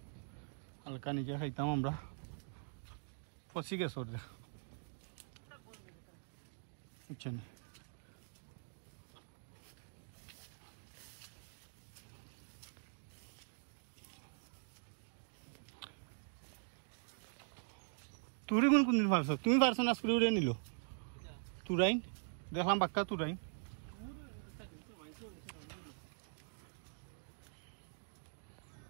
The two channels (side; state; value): left; silent; digital silence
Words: হালকা নিজে খাইতাম আমরা পচি গেছে ওর বুঝছেন। তুরি কোনদিন পারছো? তুমি পারছো না স্কুলে উড়ে নিল তুরাইন দেখলাম বাক্কা তুরাইন।